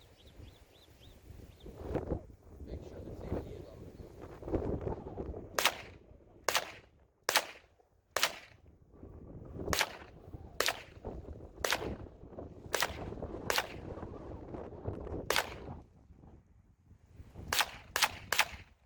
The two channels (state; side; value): identical; both; correlation 1.00